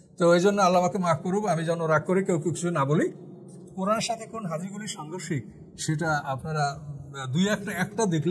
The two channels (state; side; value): identical; both; correlation 1.00